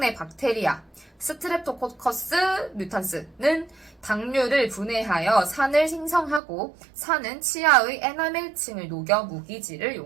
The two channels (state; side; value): drops out; left; at 6.4 s